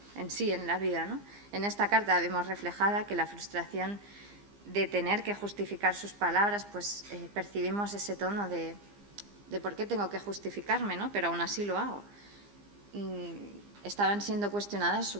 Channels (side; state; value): left; late; 15 ms